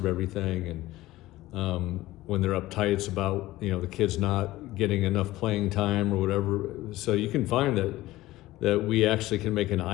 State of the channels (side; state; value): right; quieter; 17.0 dB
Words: everything. And when they're uptight, it's about the kids not getting enough playing time or whatever. So you can find that we actually can make an